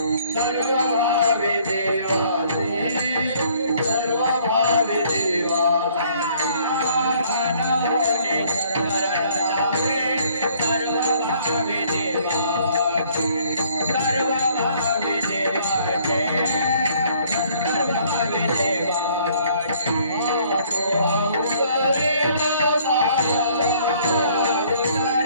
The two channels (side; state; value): both; inverted; correlation -0.61